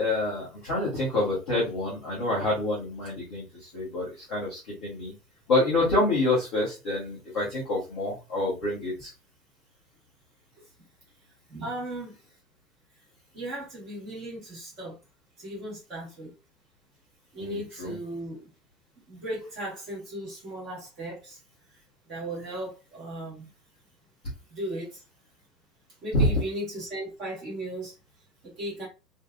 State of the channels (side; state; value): both; normal; correlation 0.31